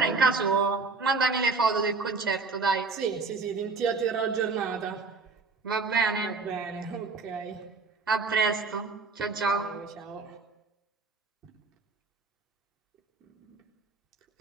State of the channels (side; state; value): left; quieter; 4.4 dB